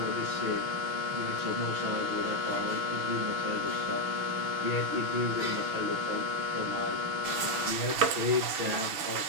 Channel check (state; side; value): late; left; 6.2 ms